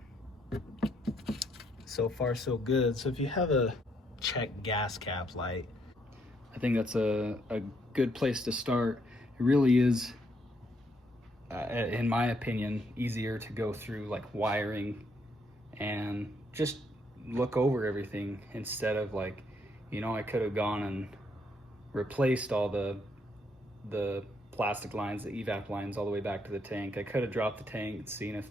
so far so good. So if you have a check gas cap light, I think that's a good place to start. It really is, in my opinion, easier to go through like wiring and just look over everything instead of like, you know, I could have gone and replaced all the plastic lines, the evap lines all the way back to the tank. I could have dropped the tank and seen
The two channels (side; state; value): both; normal; correlation 0.73